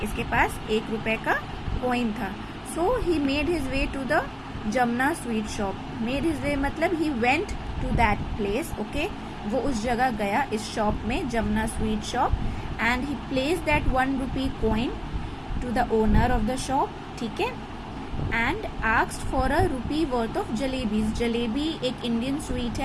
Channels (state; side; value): identical; both; correlation 1.00